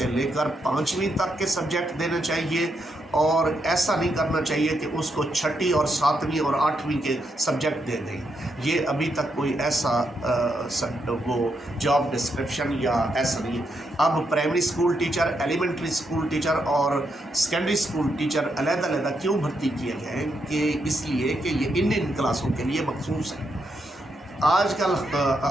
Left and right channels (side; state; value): both; normal; correlation 0.80